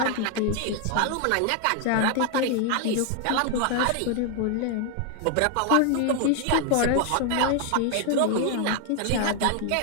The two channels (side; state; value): both; different; correlation 0.00